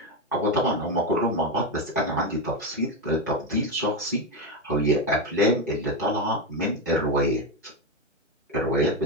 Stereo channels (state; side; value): normal; both; correlation 0.11